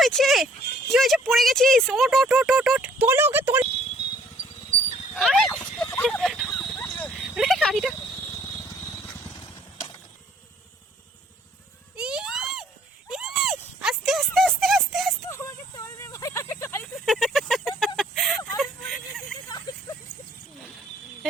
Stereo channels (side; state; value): both; normal; correlation 0.60